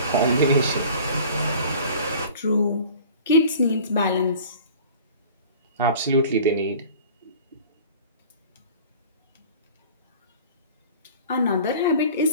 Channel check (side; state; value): both; inverted; correlation -0.44